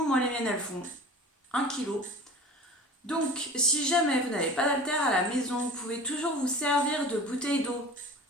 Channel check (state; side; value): normal; both; correlation 0.39